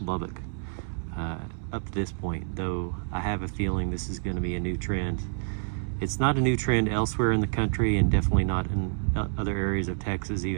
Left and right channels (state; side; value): silent; left; digital silence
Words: up to this point, though I have a feeling this is going to be a new trend. It's not a new trend elsewhere in the country, and definitely not in other areas of Texas,